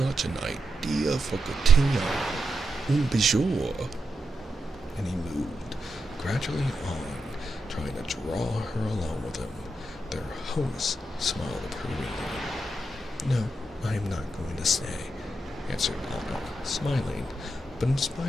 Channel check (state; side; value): normal; both; correlation 0.85